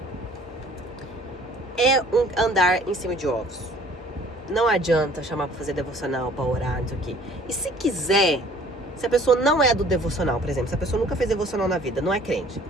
é um andar em cima de ovos. Não adianta chamar pra fazer devocional, pra orar, não sei o quê. E se quiser, se a pessoa não é do devocional, por exemplo, se a pessoa nunca fez devocional na vida, não é crente.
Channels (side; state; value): both; normal; correlation 0.53